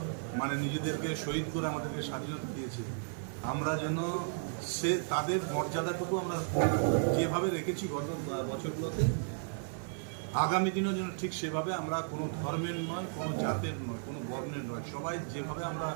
মানে নিজেদেরকে শহীদ করে আমাদেরকে স্বাধীনতা দিয়েছে, আমরা যেন তাদের মর্যাদাটুকু আমরা যেভাবে রেখেছি গত বছরগুলোতে, আগামী দিনও যেন ঠিক সেভাবে আমরা কোনো ধর্মের নয়, কোনো জাতের নয়, কোনো বর্ণের নয়, সবাই যেভাবে আমরা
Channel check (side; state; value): left; silent; digital silence